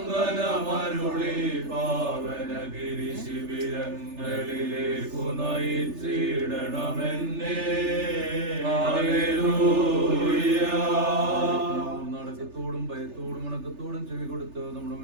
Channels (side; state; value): left; late; 3.4 ms